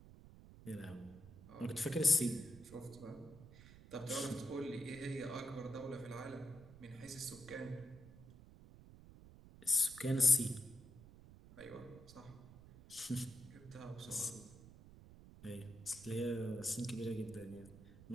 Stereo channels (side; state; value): right; noise; rumble, 18 dB below the sound